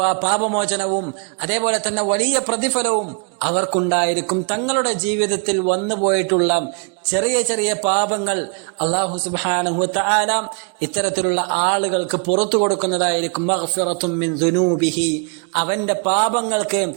പാപമോചനവും അതേപോലെ തന്നെ വലിയ പ്രതിഫലവും അവർക്കുണ്ടായിരിക്കും. തങ്ങളുടെ ജീവിതത്തിൽ വന്നുപോയിട്ടുള്ള ചെറിയ ചെറിയ പാപങ്ങൾ അല്ലാഹു സുബ്ഹാനഹു വ തആല ഇത്തരത്തിലുള്ള ആളുകൾക്ക് പുറത്തു കൊടുക്കുന്നതായിരിക്കും. മഗ്ഫിറത്തും മിൻ ദുനൂബിഹി, അവന്റെ പാപങ്ങൾക്ക്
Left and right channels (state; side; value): quieter; left; 37.4 dB